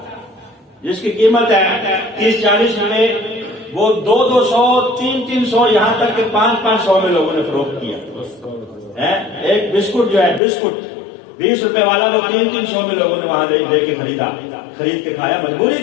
جس کی قیمت ہے 30-40 روپے، وہ 200-200 300 یہاں تک کہ 500 میں لوگوں نے فروخت کیا۔ ایک بسکٹ جو ہے، بسکٹ 20 روپے والا، وہ 300 میں لوگوں نے وہاں لے کے خرید کے کھایا، مجبوری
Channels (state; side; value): drops out; right; at 10.4 s